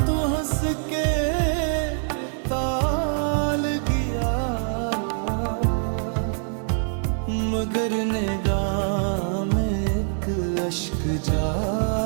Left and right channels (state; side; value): silent; left; digital silence